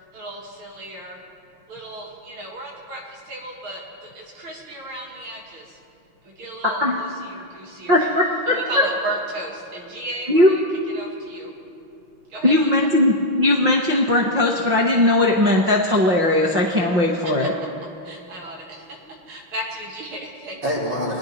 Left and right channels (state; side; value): late; left; 5.7 ms